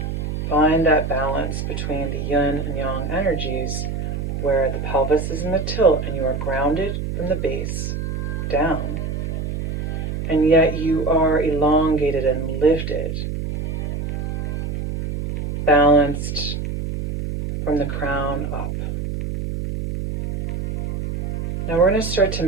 Find that balance between the yin and yang energies where the pelvis is in the tilt and you are grounded from the base down, and yet you are elongated and lifted, balanced from the crown up. Now we're going to start to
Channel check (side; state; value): right; noise; hum, 3 dB below the sound